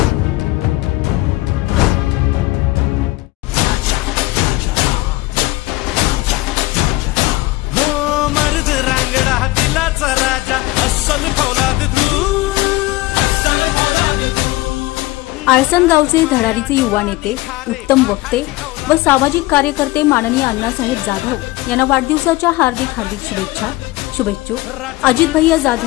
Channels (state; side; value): quieter; right; 19.5 dB